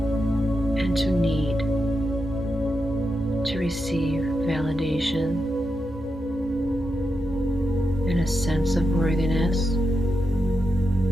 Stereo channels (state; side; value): normal; both; correlation 0.87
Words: and to need to receive validation and a sense of worthiness